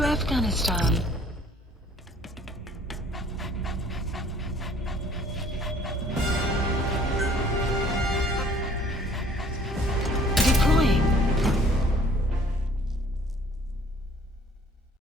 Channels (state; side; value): normal; both; correlation 0.56